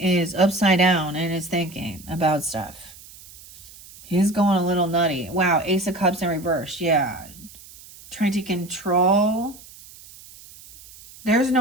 is upside down in his thinking about stuff. He's going a little nutty. Wow, Ace of Cups in reverse. Yeah. Trying to control. There's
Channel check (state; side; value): noise; right; hiss, 20 dB below the sound